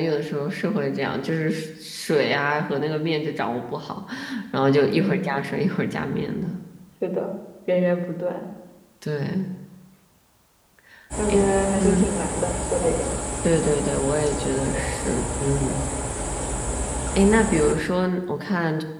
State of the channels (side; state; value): both; identical; correlation 1.00